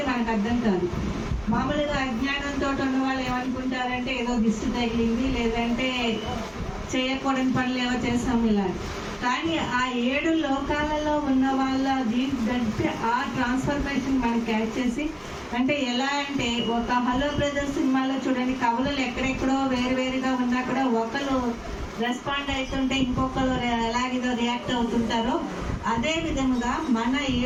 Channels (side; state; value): both; identical; correlation 1.00